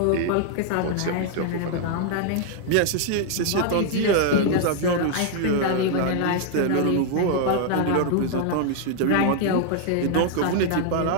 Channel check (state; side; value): different; both; correlation 0.00